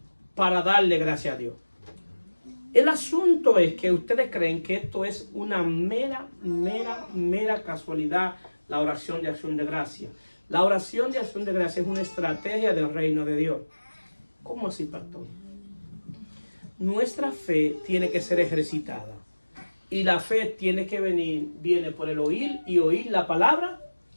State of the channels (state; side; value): inverted; both; correlation -1.00